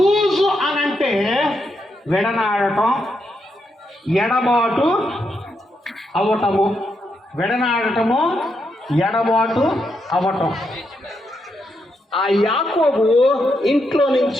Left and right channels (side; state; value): both; normal; correlation 0.81